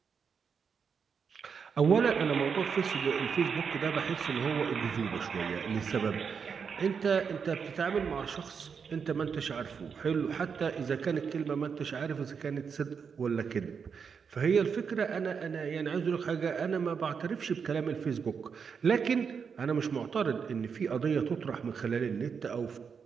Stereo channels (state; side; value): quieter; left; 6.3 dB